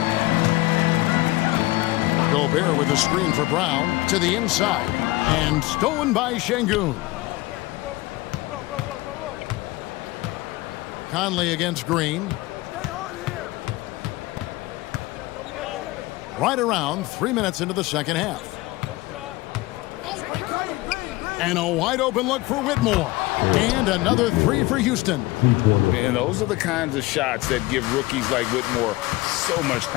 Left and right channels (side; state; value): right; quieter; 20.3 dB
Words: Gobert with a screen for Brown. To the inside. And stolen by Şengün. Conley against Green. Right around 3 minutes into the second half. And a wide open look for Whitmore. And another 3 for Houston. And those are the kinds of shots that give rookies like Whitmore so much